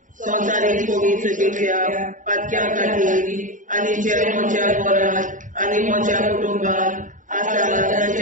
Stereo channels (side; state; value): left; late; 0.37 ms